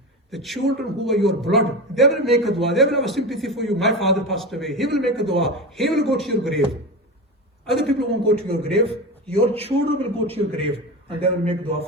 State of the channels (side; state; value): both; normal; correlation 0.24